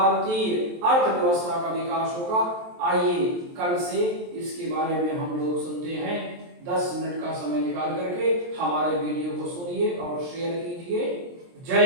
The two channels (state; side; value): late; left; 23 ms